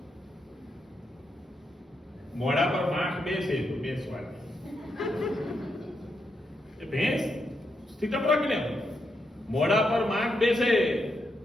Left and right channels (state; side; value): normal; both; correlation 0.82